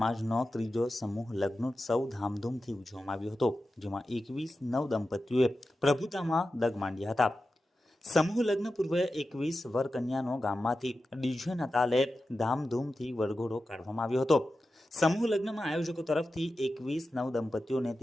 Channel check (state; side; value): normal; both; correlation 0.92